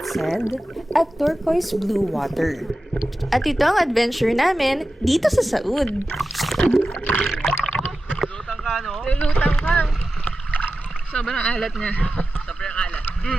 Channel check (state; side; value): normal; both; correlation 0.93